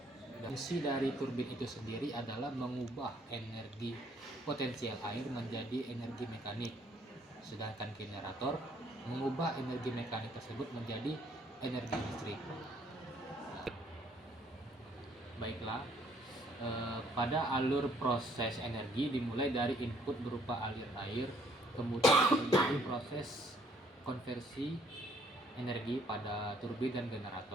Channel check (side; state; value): both; normal; correlation 0.64